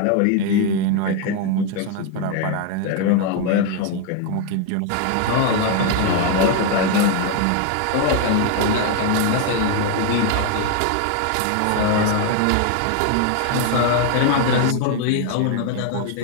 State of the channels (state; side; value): different; both; correlation 0.01